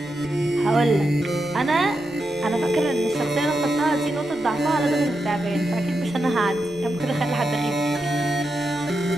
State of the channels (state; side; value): noise; left; rumble, 25 dB below the sound